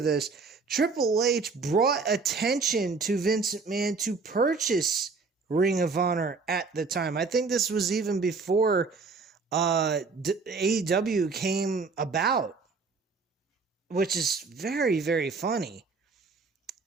Triple H brought attention to Vince McMahon to purchase Ring of Honor at the time. I think this was even before AEW came about, which is very, very funny.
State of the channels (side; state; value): left; quieter; 4.4 dB